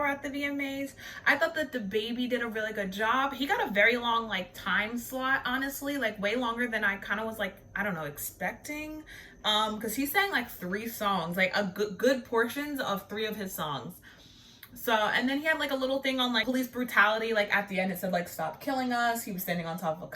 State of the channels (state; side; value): identical; both; correlation 1.00